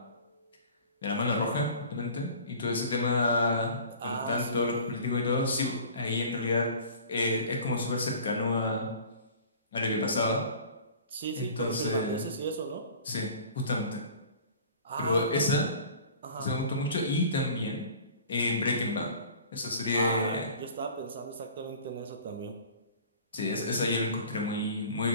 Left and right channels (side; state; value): both; inverted; correlation -0.45